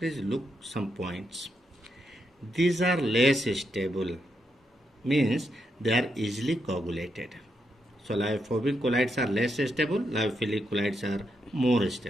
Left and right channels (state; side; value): normal; both; correlation 0.82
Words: look some points. These are less stable, means they are easily coagulated. So lyophobic colloids are less stable, lyophilic colloids are more